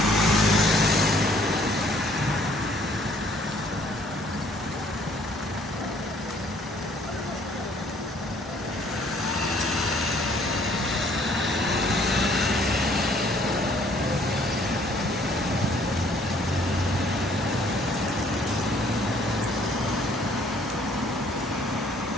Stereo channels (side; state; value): both; normal; correlation 0.61